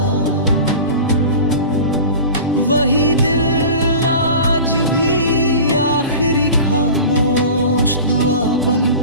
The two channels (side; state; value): both; inverted; correlation -0.36